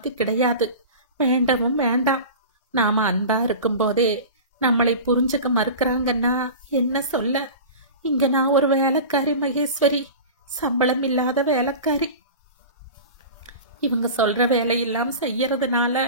கிடையாது. வேண்டவும் வேண்டாம். நாம அன்பா இருக்கும்போதே நம்மளை புரிஞ்சுக்க மறுக்கிறாங்கன்னா என்ன சொல்ல? இங்க நான் ஒரு வேலைக்காரி மகேஸ்வரி, சம்பளம் இல்லாத வேலைக்காரி. இவங்க சொல்ற வேலையெல்லாம் செய்யறதுனால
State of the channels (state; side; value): inverted; both; correlation -0.33